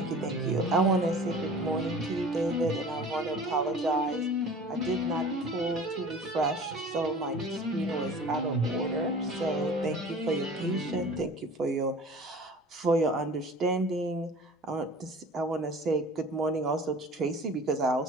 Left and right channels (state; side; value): normal; both; correlation 0.43